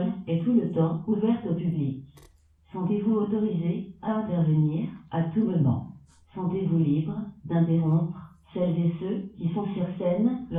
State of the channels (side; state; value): both; identical; correlation 1.00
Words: est tout le temps ouverte au public. Sentez-vous autorisé à intervenir à tout moment. Sentez-vous libre d'interrompre celles et ceux qui sont sur scène